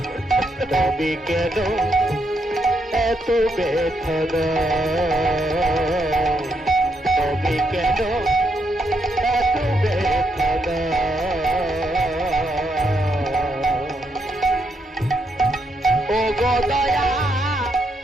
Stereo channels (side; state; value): both; normal; correlation 0.78